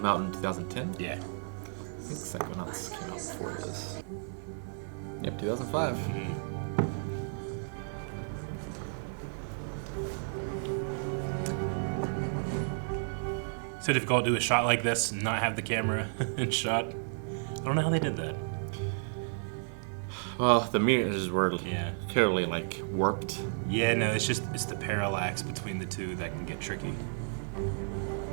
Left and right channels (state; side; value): silent; left; digital silence